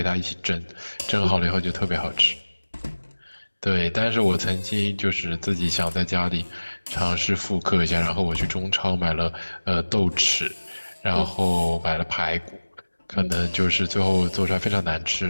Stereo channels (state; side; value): inverted; both; correlation -1.00